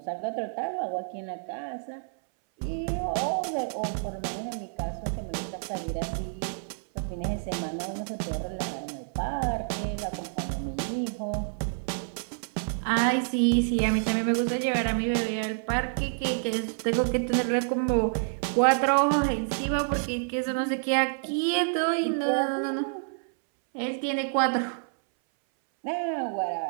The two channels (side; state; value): left; silent; 59 dB below the other